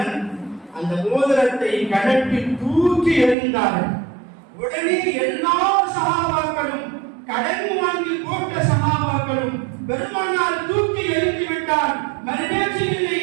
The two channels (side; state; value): left; drops out; at 3.4 s